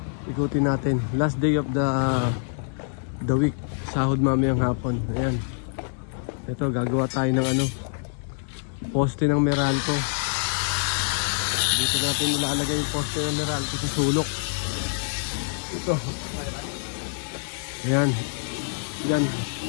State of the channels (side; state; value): right; silent; 61 dB below the other